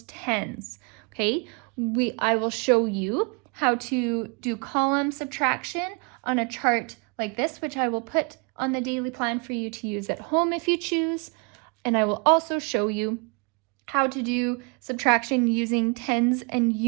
tens. Okay, I will show you how to do column subtraction on a chart like this, which I will put on the daily plan for you to use at home if you choose. And I will also show you how to do subtraction using tens and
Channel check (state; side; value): quieter; left; 33.4 dB